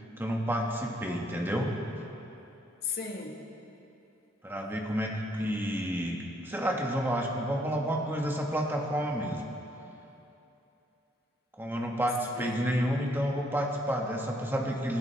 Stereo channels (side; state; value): both; normal; correlation 0.69